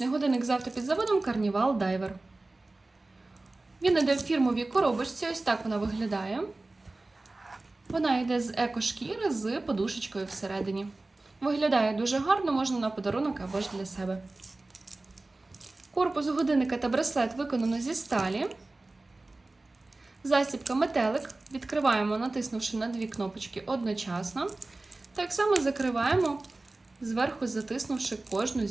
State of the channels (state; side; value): quieter; left; 3.0 dB